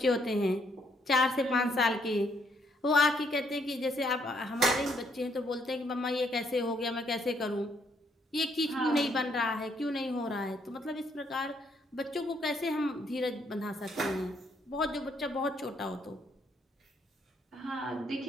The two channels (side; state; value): both; normal; correlation 0.71